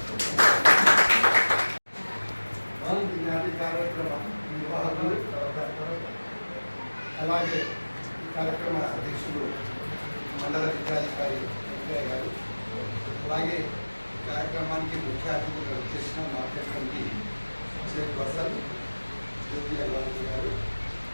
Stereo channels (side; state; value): both; inverted; correlation -1.00